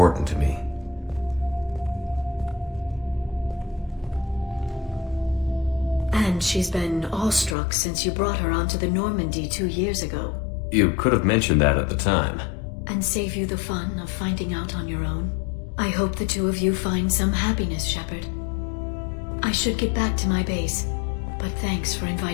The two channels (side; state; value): right; drops out; at 7.6 s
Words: to me. And she's been awestruck since you brought her onto the Normandy 2 years ago. You could have mentioned that at the time. And save you the fun of finding out on your own. I hope the two of you find some happiness, Shepard. I should get back to my base, but thanks for